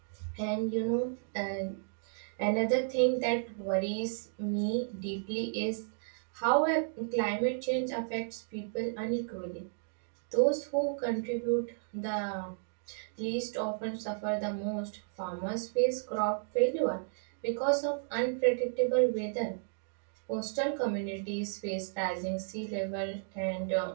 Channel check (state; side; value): silent; left; digital silence